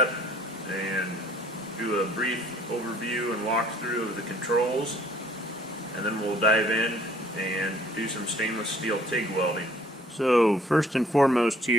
and do a brief overview and walkthrough of the controls, and then we'll dive in and do some stainless steel TIG welding. So first and foremost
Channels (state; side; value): normal; both; correlation 0.58